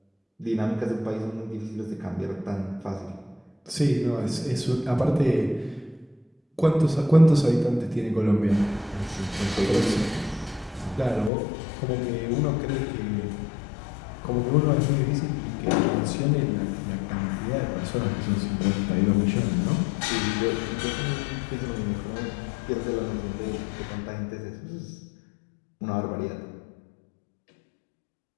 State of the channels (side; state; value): right; drops out; at 11.3 s